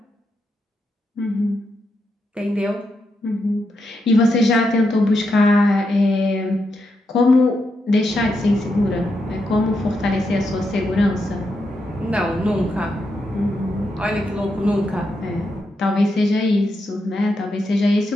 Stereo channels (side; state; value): both; normal; correlation 0.83